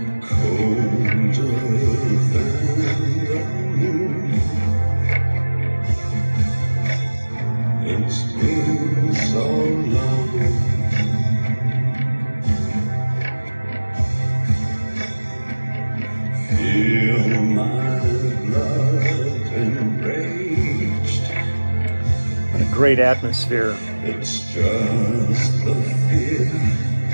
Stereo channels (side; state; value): both; inverted; correlation -1.00